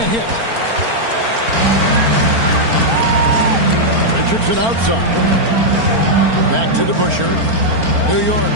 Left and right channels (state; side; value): late; left; 4.4 ms